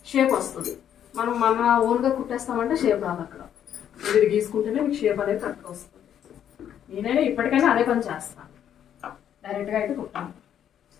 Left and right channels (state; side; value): quieter; right; 9.7 dB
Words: షేప్ వస్తుంది. మనం మన ఓన్గా కుట్టేస్తామంటే షేప్ రాదు. అక్కడ ఇది గీసుకుంటేనే మీకు షేప్ అనేది కరెక్ట్గా వస్తుంది. నేనైనా ఇప్పటికైనా అదే పని చేస్తాను, డైరెక్ట్గా అయితే కుట్టాను.